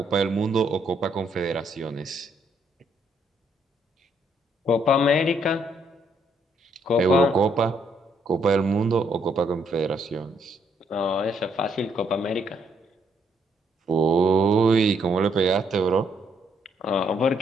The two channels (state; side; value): normal; both; correlation 0.72